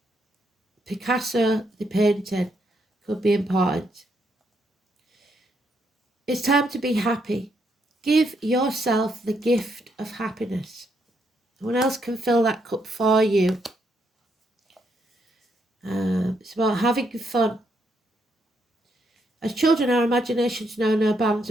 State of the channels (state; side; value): normal; both; correlation 0.76